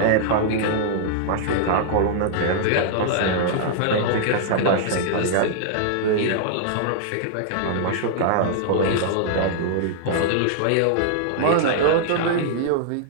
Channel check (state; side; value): different; both; correlation -0.01